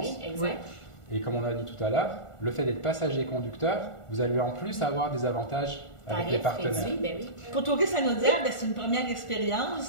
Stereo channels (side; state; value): right; late; 1.4 ms